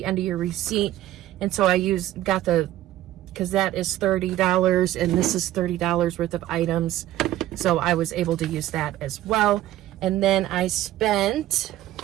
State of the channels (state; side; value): quieter; left; 14.4 dB